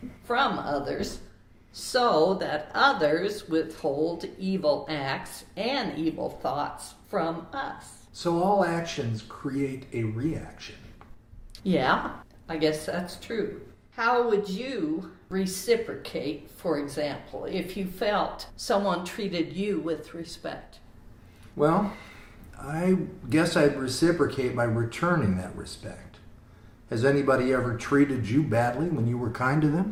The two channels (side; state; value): both; identical; correlation 1.00